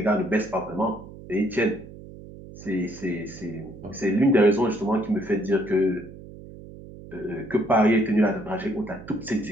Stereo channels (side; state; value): right; noise; hum, 16 dB below the sound